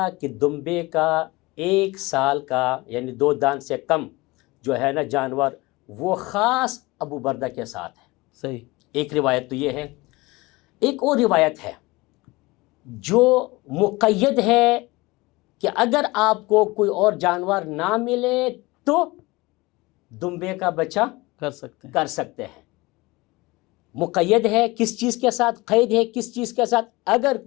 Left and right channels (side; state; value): right; quieter; 22.2 dB